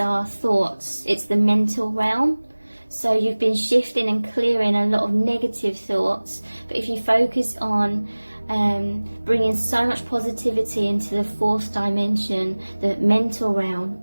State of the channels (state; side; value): inverted; both; correlation -1.00